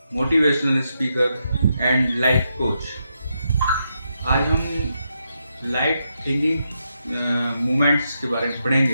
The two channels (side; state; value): both; inverted; correlation -0.83